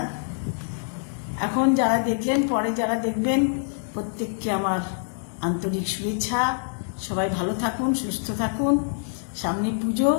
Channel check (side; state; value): right; silent; digital silence